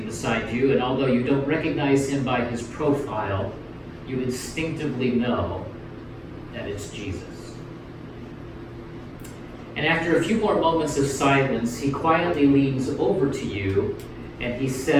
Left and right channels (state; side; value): identical; both; correlation 1.00